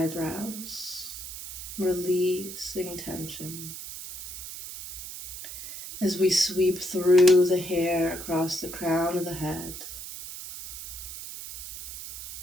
releasing tension. As we sweep through the hair across the crown of the head,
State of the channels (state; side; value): noise; right; hiss, 10 dB below the sound